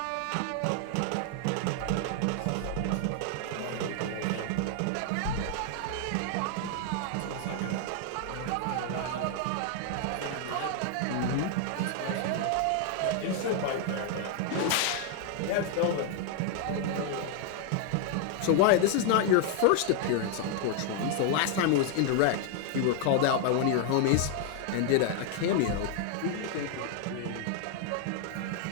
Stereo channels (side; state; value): both; different; correlation 0.00